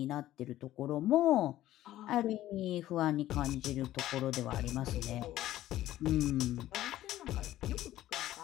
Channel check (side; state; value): right; quieter; 14.2 dB